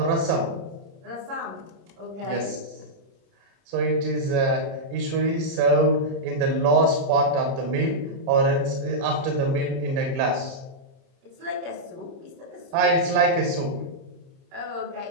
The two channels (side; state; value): left; late; 30 ms